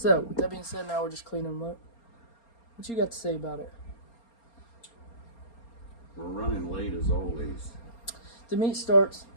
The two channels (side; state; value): right; late; 4.3 ms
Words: with that being said, now we're just cleaning them up. What you got to say about it? We're running late as always. The meet starts